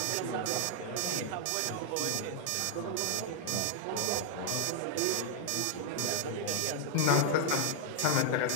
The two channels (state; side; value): different; both; correlation 0.00